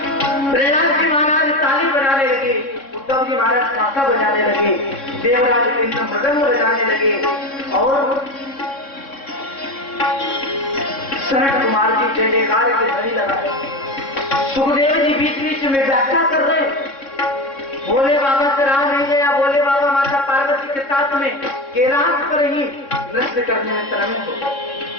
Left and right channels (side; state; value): right; late; 3.6 ms